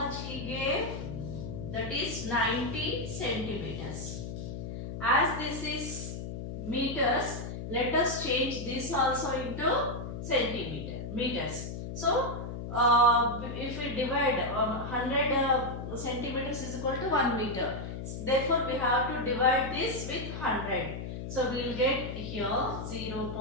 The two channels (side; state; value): left; noise; hum, 7 dB below the sound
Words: he gave? That is 90 centimeters. As this is meters, let us change this also into meters. So, if we divide 100 centimeters is equal to 1 meter. Therefore, we have to divide this with 100. So, we will get here